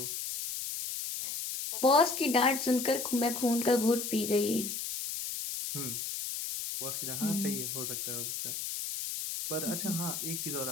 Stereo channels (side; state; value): left; noise; hiss, 4 dB below the sound